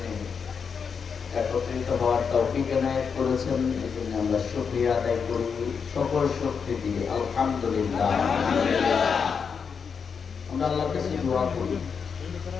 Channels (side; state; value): right; quieter; 6.2 dB